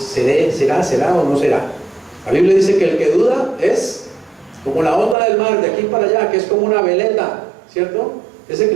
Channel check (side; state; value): left; drops out; at 5.2 s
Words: o no será. La Biblia dice que el que duda es como la onda del mar de aquí para allá, que es como una veleta, ¿cierto? Ese